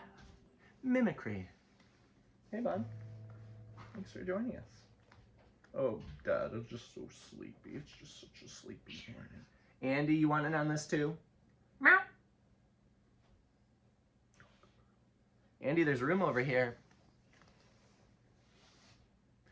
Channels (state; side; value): identical; both; correlation 1.00